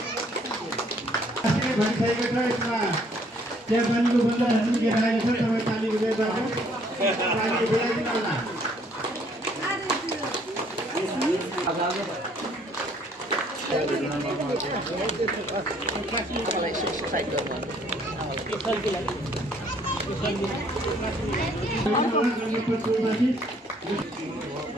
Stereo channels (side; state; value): both; normal; correlation 0.63